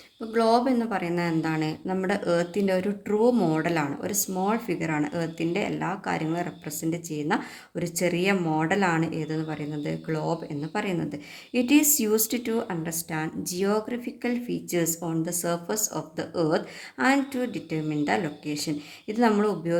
ഇപ്പോൾ ഗ്ലോബ് എന്ന് പറയുന്നത് എന്താണ്? നമ്മുടെ എർത്തിൻ്റെ ഒരു ട്രൂ മോഡലാണ്, ഒരു സ്മോൾ ഫിഗറാണ്. എർത്തിൻ്റെ എല്ലാ കാര്യങ്ങളും റെപ്രസെൻ്റ് ചെയ്യുന്ന ഒരു ചെറിയ മോഡലാണ് ഏതെന്ന് പറയുന്നത്? ഗ്ലോബ് എന്ന് പറയുന്നത്. It is used to understand geographical features on the surface of the earth and to determine the location. ഇത് നമ്മൾ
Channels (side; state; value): both; identical; correlation 1.00